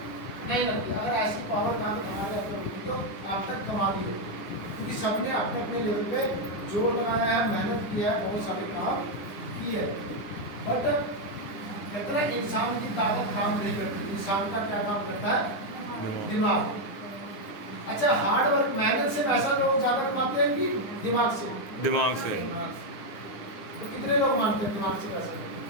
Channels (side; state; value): right; late; 9.8 ms